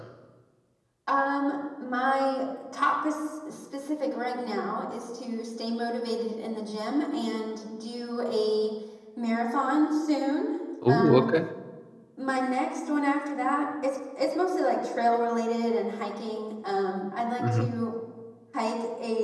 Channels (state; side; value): identical; both; correlation 1.00